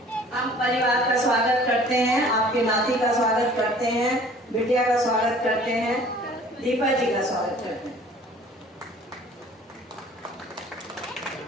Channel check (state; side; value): normal; both; correlation 0.51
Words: हम परिवार का स्वागत करते हैं, आपके नाती का स्वागत करते हैं, बिटिया का स्वागत करते हैं, दीपा जी का स्वागत करते हैं।